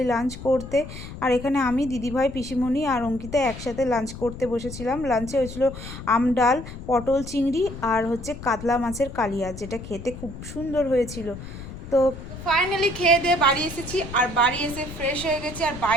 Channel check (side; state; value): left; noise; rumble, 11 dB below the sound